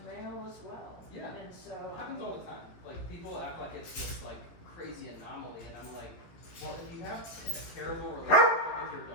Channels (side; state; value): right; late; 18 ms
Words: male as well. Yeah. And so. It happens all the time. Like, people act like it's this, like, crazy anomaly, and I'm like, well, if you have a terrible relationship with your